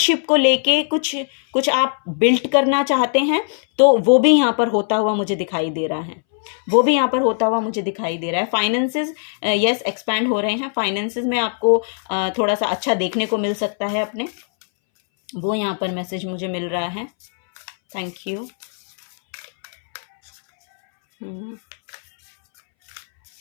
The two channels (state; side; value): silent; right; 63 dB below the other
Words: को लेके कुछ आप बिल्ड करना चाहते हैं, तो वो भी यहाँ पर होता हुआ मुझे दिखाई दे रहा है। वो भी यहाँ पर होता हुआ मुझे दिखाई दे रहा है। फाइनेंसेस यस एक्सपैंड हो रहे हैं। फाइनेंसेस में आपको थोड़ा सा अच्छा देखने को मिल सकता है अपने, वो यहाँ पर मैसेज मुझे मिल रहा है। Thank you.